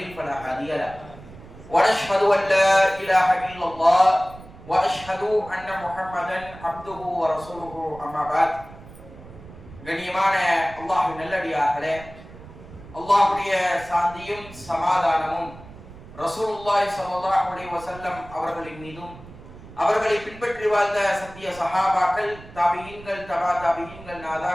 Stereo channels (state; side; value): noise; right; rumble, 18 dB below the sound